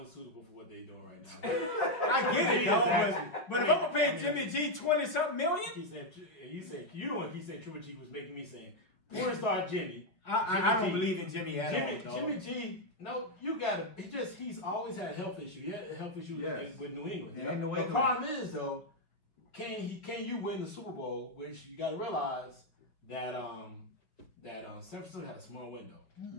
for what they're doing right now. I get it, though. But if I'm gonna pay Jimmy G $20-something million, he said Triple G was making me saying, porn star Jimmy. I don't believe in Jimmy at all. Jimmy G. No, you gotta. He's always had a health issue. He had a health issue with New England. Yeah, the problem is though, can you win the Super Bowl? Which you gotta realize that San Francisco had a small window.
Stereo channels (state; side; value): late; right; 5.1 ms